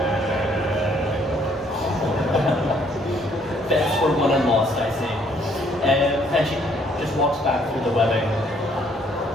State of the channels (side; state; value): both; normal; correlation 0.65